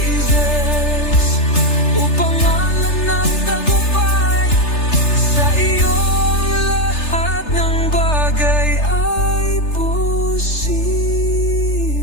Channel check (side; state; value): right; late; 3.3 ms